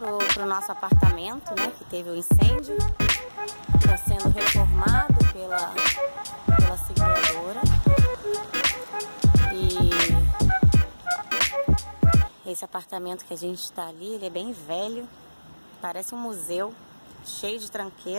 nosso apartamento, né? Que teve o incêndio. Está sendo reformado pela seguradora. E esse apartamento que a gente está ali, ele é bem velho. Parece um museu, cheio de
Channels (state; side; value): inverted; both; correlation -1.00